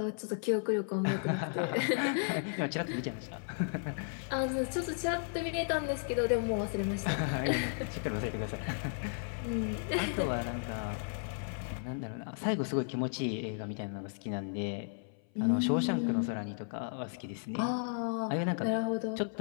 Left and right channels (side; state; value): right; silent; 55 dB below the other